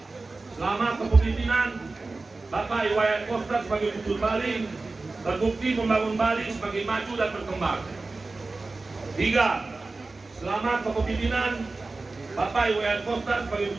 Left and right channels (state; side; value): quieter; left; 3.5 dB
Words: Selama kepemimpinan Bapak Iwayan Koster sebagai Gubernur Bali terbukti membangun Bali sebagai maju dan berkembang. 3. Selama kepemimpinan Bapak Iwayan Koster sebagai